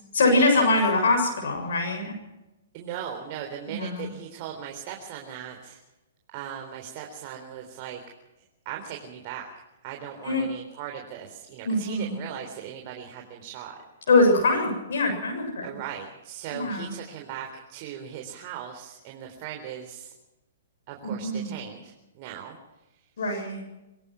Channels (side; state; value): both; inverted; correlation -0.53